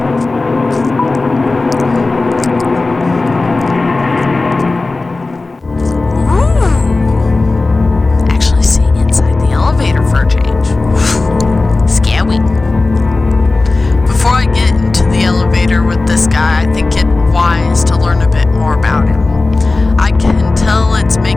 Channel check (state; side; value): quieter; right; 3.4 dB